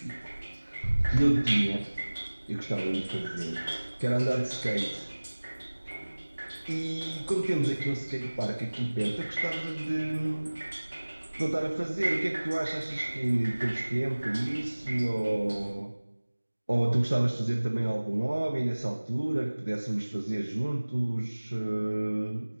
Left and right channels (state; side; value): inverted; both; correlation -1.00